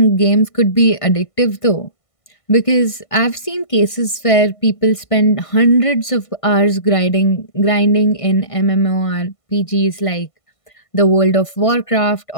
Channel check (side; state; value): right; late; 1.5 ms